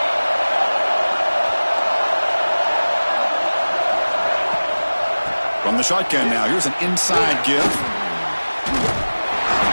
From the shotgun now. Here's an inside give.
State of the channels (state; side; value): inverted; both; correlation -1.00